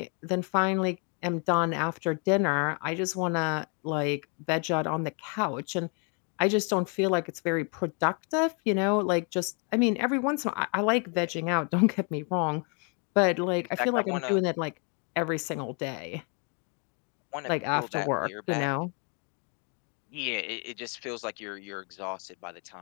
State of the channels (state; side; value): quieter; right; 37.4 dB